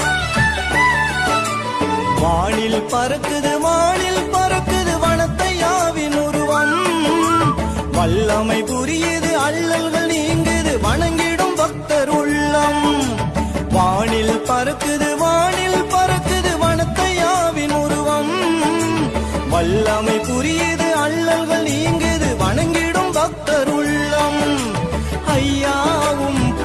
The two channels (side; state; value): both; identical; correlation 1.00